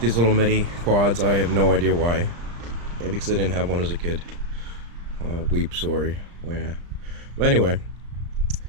these little mini quads. I have no idea why. Maybe because I didn't have one as a kid. Weep, sorry. Yeah. But anyway,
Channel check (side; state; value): left; late; 35 ms